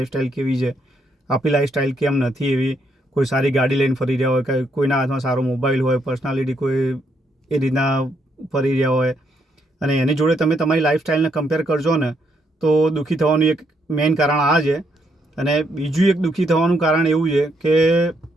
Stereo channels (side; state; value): both; normal; correlation 0.75